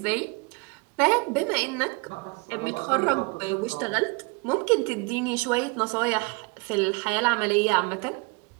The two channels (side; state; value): left; quieter; 29.7 dB